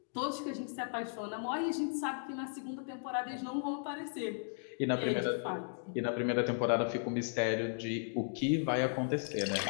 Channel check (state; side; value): silent; right; digital silence